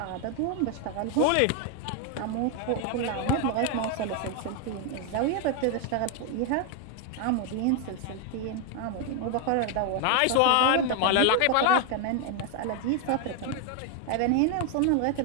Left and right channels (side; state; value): both; different; correlation 0.01